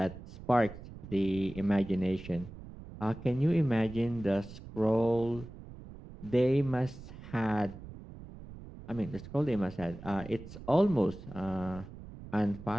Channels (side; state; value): right; noise; rumble, 15 dB below the sound